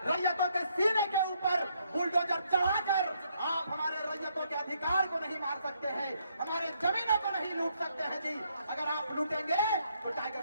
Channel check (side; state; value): both; inverted; correlation -0.73